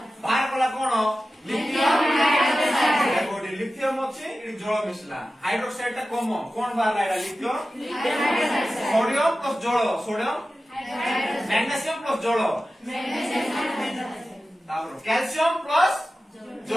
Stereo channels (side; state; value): both; normal; correlation 0.94